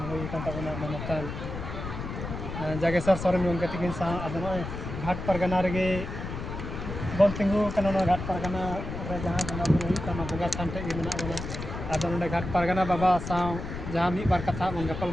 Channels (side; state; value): left; noise; rumble, 7 dB below the sound